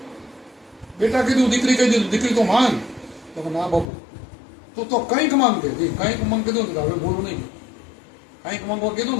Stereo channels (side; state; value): right; drops out; at 3.9 s